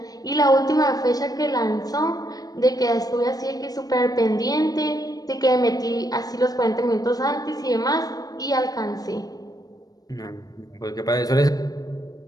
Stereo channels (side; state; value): right; late; 0.18 ms